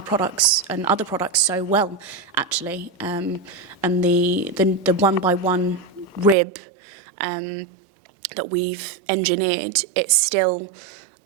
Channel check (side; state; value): left; drops out; at 6.4 s